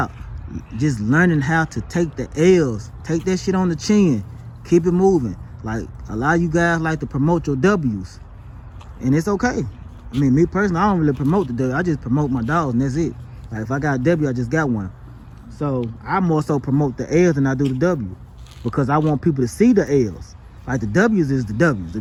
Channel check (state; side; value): identical; both; correlation 1.00